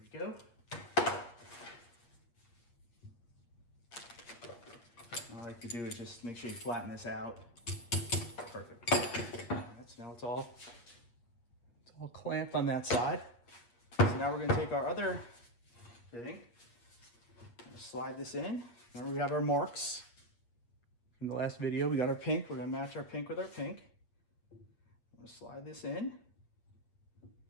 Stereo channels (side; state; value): right; late; 8.5 ms